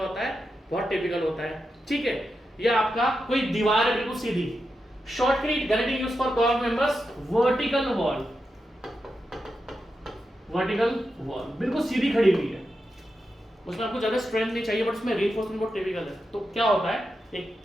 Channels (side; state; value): both; normal; correlation 0.88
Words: होता है? बहुत टिपिकल होता है। ठीक है, या आपका कोई दीवार है बिल्कुल सीधी, shotcrete guarantee use for curved members, vertical wall, vertical wall बिल्कुल सीधी खड़ी हुई है, उसमें आपको ज्यादा स्ट्रेंथ नहीं चाहिए, बट उसमें रीइंफोर्समेंट बहुत टिपिकल है। तो क्या होता है?